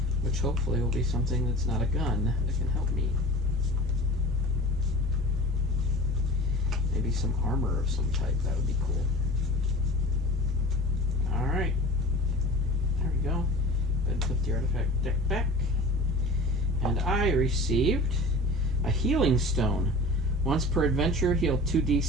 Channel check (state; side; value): normal; both; correlation 0.39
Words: which hopefully will be something that's not a gun that can help me. Maybe some armor of some type, that would be cool. Alright, there we go. Go ahead and put the artifact deck back. And I received a healing stone. Once per adventure, heal